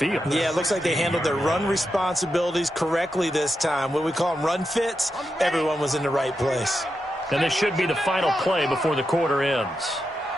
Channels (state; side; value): normal; both; correlation 0.87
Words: Yeah, it looks like they handled their run responsibilities correctly this time. What we call them run fits, everyone was in the right place. And this should be the final play before the quarter ends.